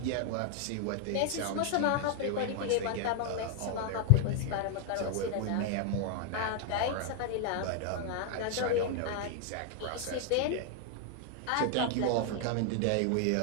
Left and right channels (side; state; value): both; different; correlation 0.00